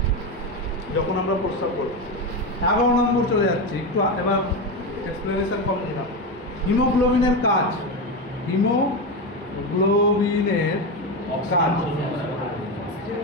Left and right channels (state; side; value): normal; both; correlation 0.15